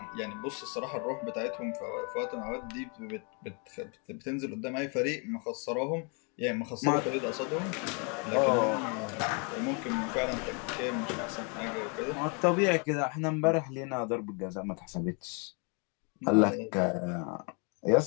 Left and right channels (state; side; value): quieter; right; 35.6 dB